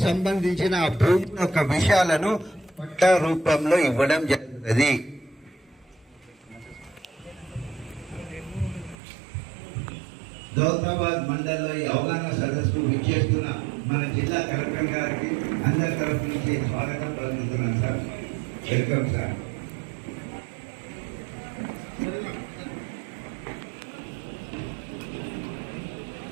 సంబంధించిన ఆ భూమి యొక్క విషయాలను పట్టా రూపంలో ఇవ్వడం జరుగుతుంది. దౌలతాబాద్ మండలంలో ఈ అవగాహన సదస్సుకు విచ్చేస్తున్న మన జిల్లా కలెక్టర్ గారికి అందరి తరఫు నుంచి స్వాగతం పలుకుతున్నాను సార్. Welcome sir.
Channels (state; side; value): drops out; left; at 9.0 s